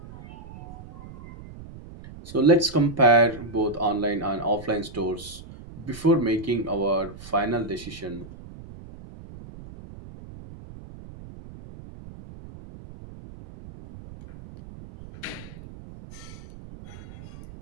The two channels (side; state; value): right; noise; rumble, 16 dB below the sound